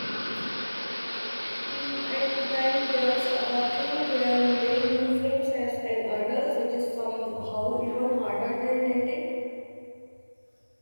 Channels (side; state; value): both; inverted; correlation -1.00